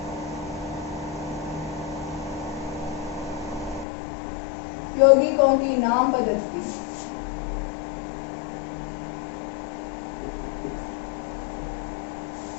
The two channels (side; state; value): right; drops out; at 3.9 s